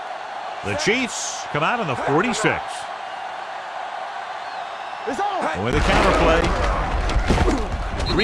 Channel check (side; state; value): both; identical; correlation 1.00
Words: The Chiefs come out on the 46. It's on. With the counter play.